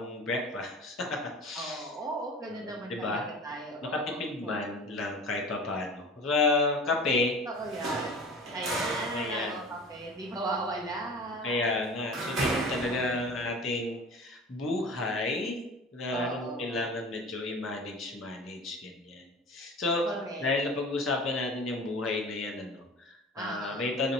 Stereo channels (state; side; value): normal; both; correlation 0.38